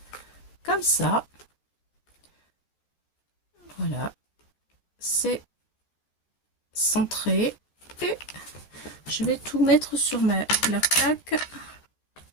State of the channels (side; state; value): right; late; 13 ms